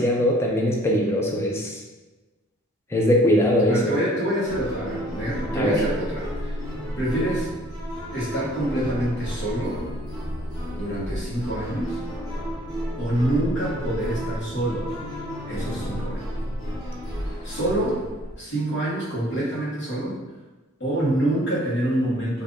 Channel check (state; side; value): normal; both; correlation 0.57